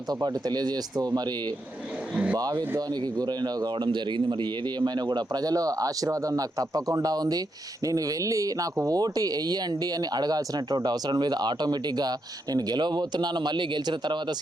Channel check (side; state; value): both; normal; correlation 0.82